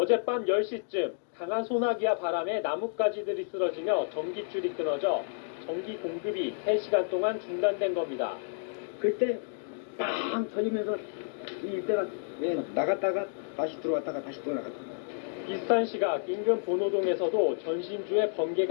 10시쯤 강한 소나기와 바람에 나뭇가지들이 쓰러지며 전기줄이 끊어져 전기 공급이 3시간 동안 중단된 겁니다. 그때 빵 터지면서 이때가 나갔다가 다시 들어왔다가 다시 또 나갔다. 비슷한 시각 인근 본호동에서도 전신주에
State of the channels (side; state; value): right; silent; digital silence